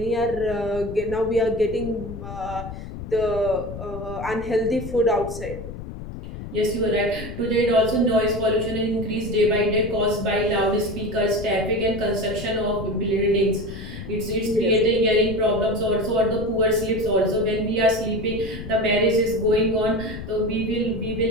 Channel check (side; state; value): left; noise; rumble, 10 dB below the sound